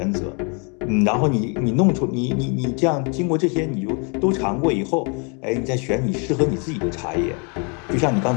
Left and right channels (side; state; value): right; quieter; 35.7 dB